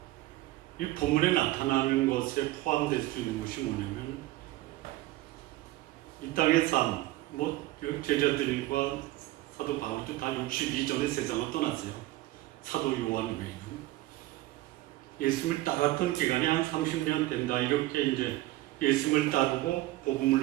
이 본문에 나타나는 것에 포함될 수 있는 것이 뭐냐면 이 땅의 삶, 제자들과 사도 바울도 다 62전에 세상을 떠났어요. 사도 요한 외에는. 예수님을 따랐던 기간이 한 30년 된다. 이렇게 이제 예수님을 따르고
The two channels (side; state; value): left; quieter; 17.3 dB